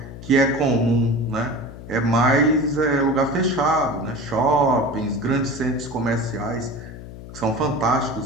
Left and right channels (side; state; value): left; noise; hum, 14 dB below the sound